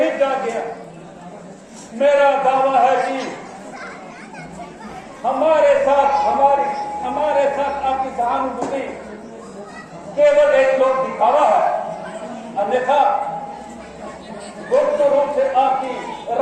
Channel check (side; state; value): both; identical; correlation 1.00